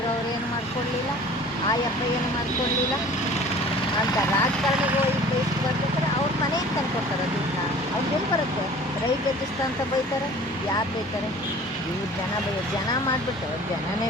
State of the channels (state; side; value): normal; both; correlation 0.47